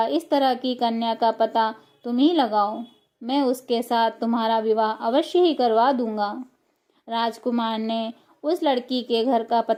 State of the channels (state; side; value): identical; both; correlation 1.00